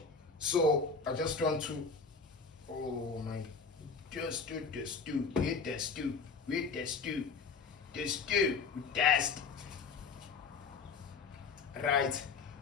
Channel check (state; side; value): quieter; right; 4.9 dB